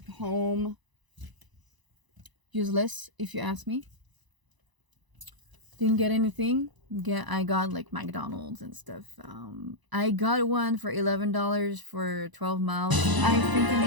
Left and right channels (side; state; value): left; late; 1.0 ms